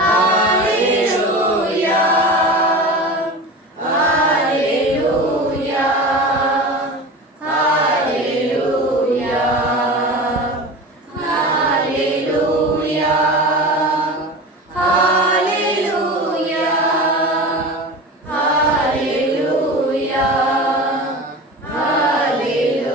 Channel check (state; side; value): normal; both; correlation 0.31